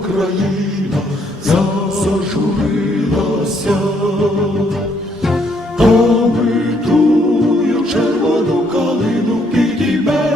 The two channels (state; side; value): normal; both; correlation 0.70